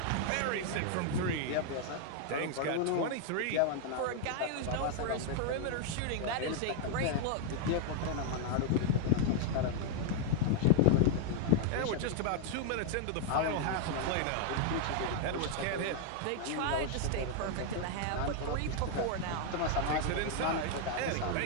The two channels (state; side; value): different; both; correlation 0.00